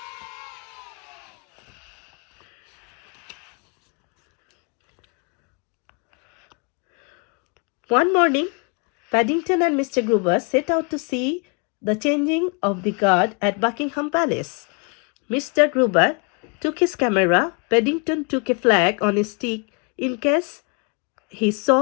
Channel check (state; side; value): quieter; right; 34.4 dB